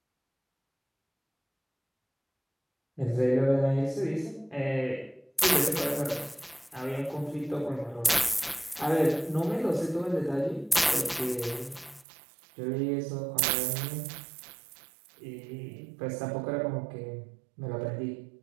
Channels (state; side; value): drops out; left; at 12.1 s